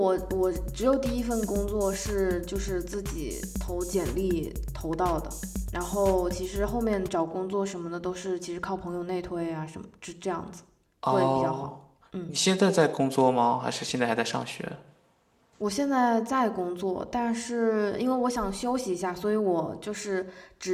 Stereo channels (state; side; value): identical; both; correlation 1.00